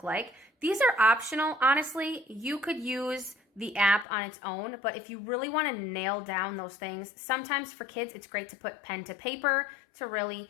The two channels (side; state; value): right; drops out; at 4.0 s